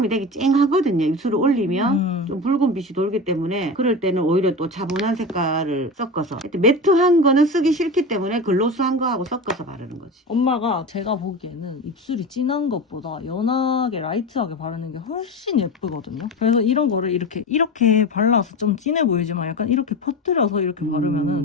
되게 쨍하거든요. 입술을 올리면 좀 붉은 빛이 돌기 때문에 그럴 때는 오히려 또 차분한 색깔을 섞어서 하여튼 매트한 거는 쓰기 싫기 때문에 글로스한 거하고 섞어서 바르는 거지. 엄마가 제가 보기에는 입술이 진한 것보다 연하게 라이트하게 바르는 게 훨씬 예쁘거든요. 그래서 이런 거를 이렇게 발라서 좀 진해 보이지만 약간 이렇게 퍼뜨려서 이렇게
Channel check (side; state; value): both; normal; correlation 0.25